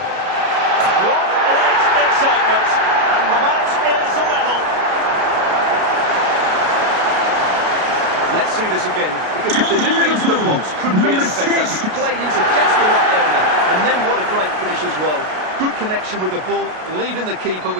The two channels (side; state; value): left; late; 33 ms